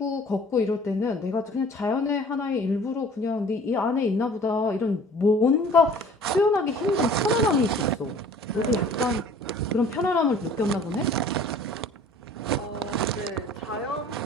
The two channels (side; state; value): both; normal; correlation 0.50